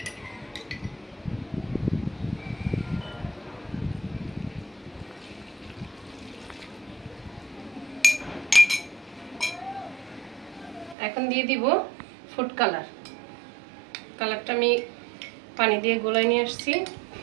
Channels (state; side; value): drops out; left; at 11.0 s